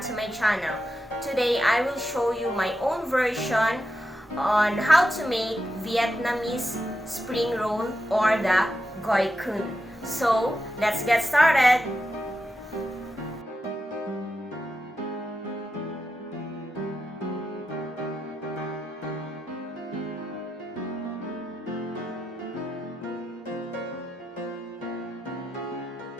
to my channel. Today I will show you my own version on how to make Vietnamese spring roll or the hoisin. So let's get started!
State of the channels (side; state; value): both; normal; correlation 0.87